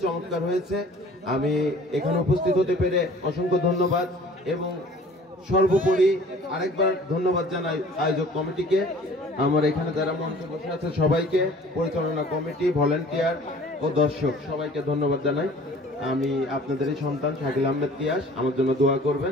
চমৎকার হয়েছে। আমি এখানে উপস্থিত হতে পেরে অসংখ্য ধন্যবাদ এবং সর্বোপরি আরেকবার ধন্যবাদ জানাই আয়োজক কমিটিকে, আমার এখানে যারা মঞ্চে বসে আছে সবাইকে, পরিচালনা কমিটি, ভলেন্টিয়ার ও দর্শক সবাইকে ধন্যবাদ জানাই। আমি আপনাদেরই সন্তান শাকিল আহমেদ তিয়াস, আমার জন্য দোয়া করবেন।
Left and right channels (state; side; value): normal; both; correlation 0.50